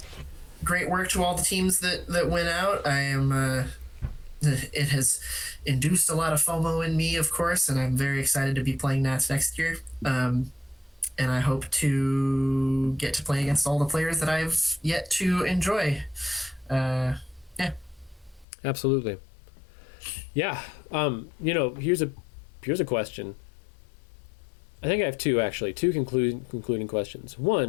to all the teams that went out. I am it has induced a lot of FOMO in me, of course, and I'm very excited to be playing Nats next year. And I hope to get to play against all the players that I've yet to enjoy. Yeah. Absolutely. Yeah. Here's a question. I think I have two concluding questions.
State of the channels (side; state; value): right; drops out; at 18.4 s